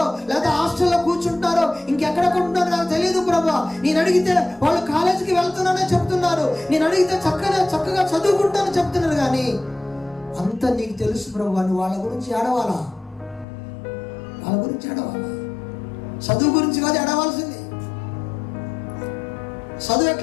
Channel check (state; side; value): drops out; right; at 13.5 s